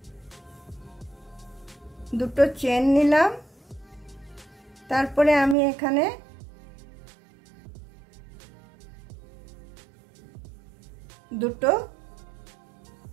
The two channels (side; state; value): left; drops out; at 5.6 s